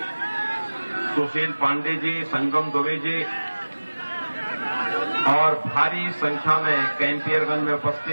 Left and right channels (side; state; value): both; inverted; correlation -1.00